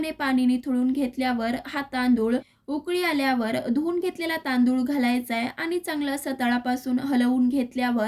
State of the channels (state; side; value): identical; both; correlation 1.00